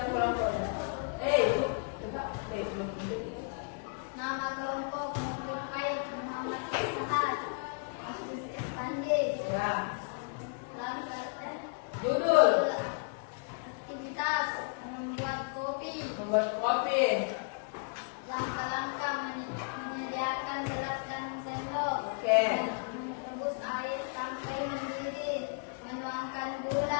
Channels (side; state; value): right; quieter; 37.4 dB